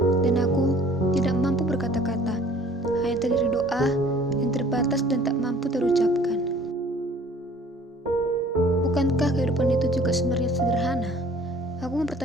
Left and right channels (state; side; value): normal; both; correlation 0.52